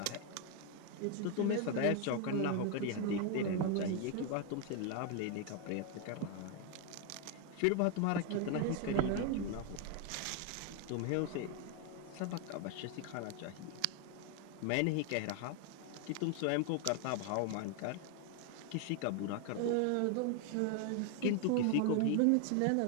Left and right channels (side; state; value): both; different; correlation 0.01